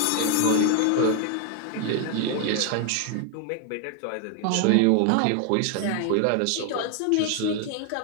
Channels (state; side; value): different; both; correlation 0.00